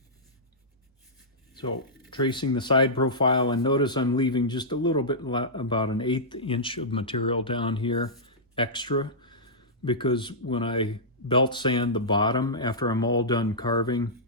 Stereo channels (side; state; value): both; normal; correlation -0.13